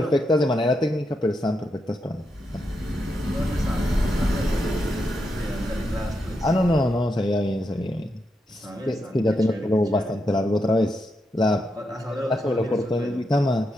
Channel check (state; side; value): normal; both; correlation 0.84